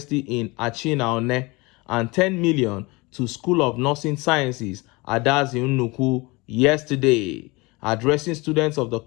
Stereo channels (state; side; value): quieter; right; 24.6 dB